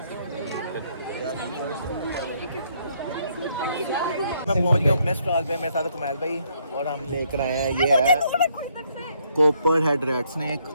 मैं पहुंच गया अपने स्टॉल पे, मेरे साथ कमाल भाई और हम लेकर आए हैं, ये है कॉपर हेड रेड स्नेक,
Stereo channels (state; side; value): inverted; both; correlation -0.70